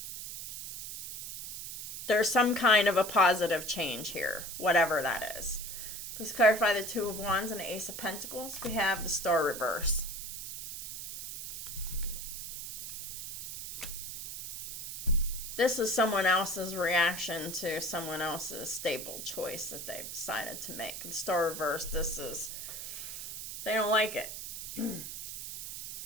There's some kind of a positive change here, whatever that is. Please clarify the Two of Wands and the Ace of Pentacles. We have the Star reverse. This is someone else's reaction to someone else's stable choice that they've decided to make. The Star reverse, they don't like it.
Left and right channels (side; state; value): right; noise; hiss, 8 dB below the sound